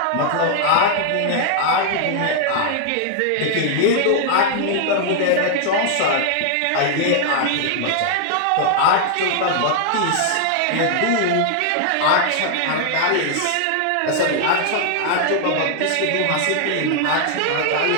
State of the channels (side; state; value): both; different; correlation 0.00